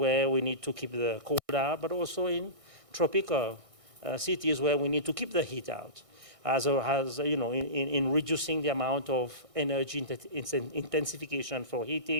we need to keep the cold out, but also in tropical cities where we need to keep the heat out, in reducing the amount of energy intensification for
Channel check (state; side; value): late; left; 1.6 ms